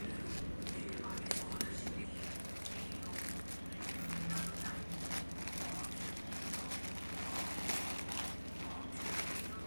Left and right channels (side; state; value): both; inverted; correlation -1.00